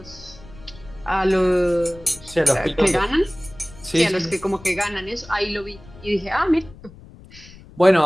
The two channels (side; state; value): left; noise; rumble, 20 dB below the sound